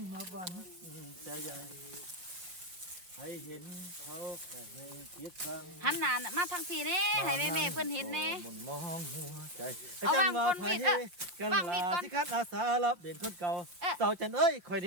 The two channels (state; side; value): late; left; 6.0 ms